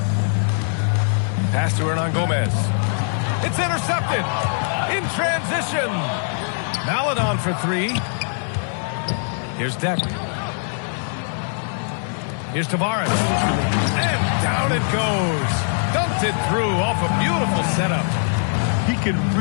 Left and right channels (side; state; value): right; silent; 64 dB below the other